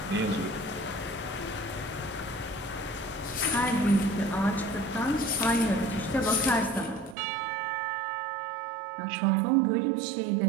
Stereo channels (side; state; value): left; drops out; at 7.2 s